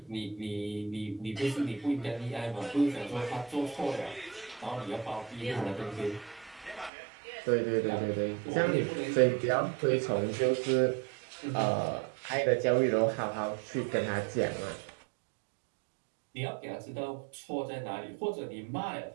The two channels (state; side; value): drops out; left; at 6.9 s